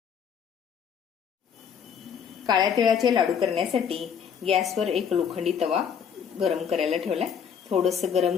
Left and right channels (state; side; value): quieter; right; 7.5 dB